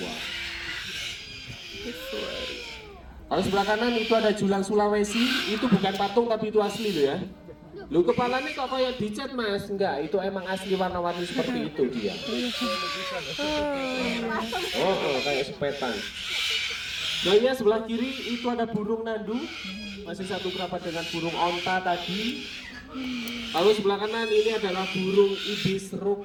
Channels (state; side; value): identical; both; correlation 1.00